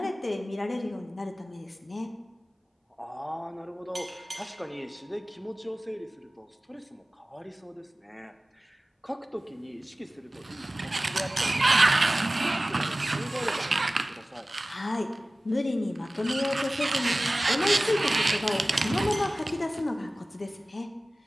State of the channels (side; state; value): both; normal; correlation 0.97